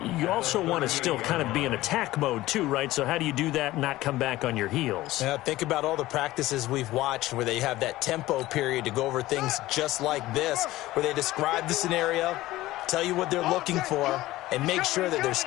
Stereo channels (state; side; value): quieter; right; 17.0 dB